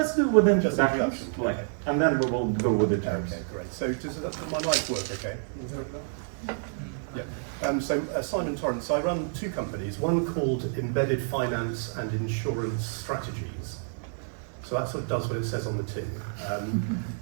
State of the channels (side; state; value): left; silent; 59 dB below the other